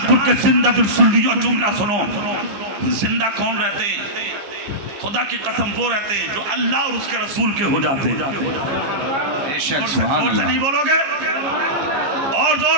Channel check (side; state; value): left; late; 15 ms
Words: کے زندہ دل سنیو جملہ سنو زندہ کون رہتے ہیں خدا کی قسم وہ رہتے ہیں جو اللہ اور اس کے رسول کے ہو جاتے ہیں زور سے نہیں بولو گے اور